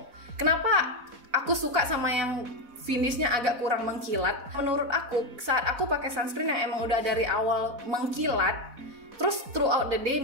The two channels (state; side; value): late; left; 4.1 ms